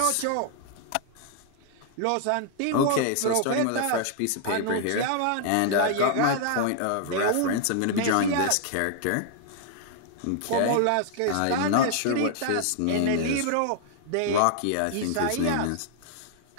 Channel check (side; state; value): both; different; correlation 0.00